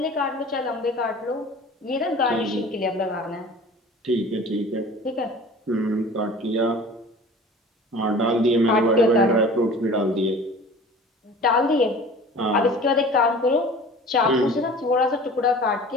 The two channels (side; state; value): both; normal; correlation 0.43